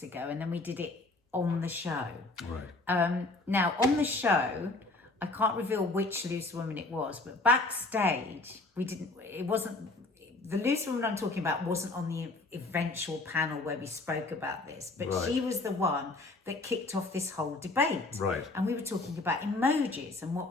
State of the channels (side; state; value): right; quieter; 3.1 dB